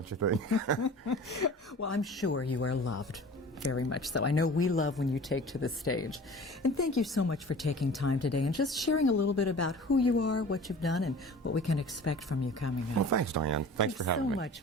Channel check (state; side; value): normal; both; correlation 0.42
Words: you think? Well, I'm sure you are loved Very much so. I know we love when you take to the stage. And thank you so much for taking time today and just sharing a little bit about who you are, what you've done, and what we can expect from you coming up. Well, thanks, Diane. Thanks for having me. so